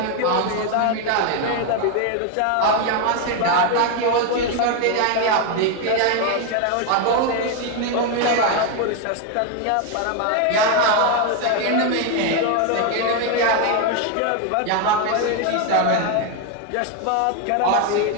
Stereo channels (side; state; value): both; different; correlation 0.01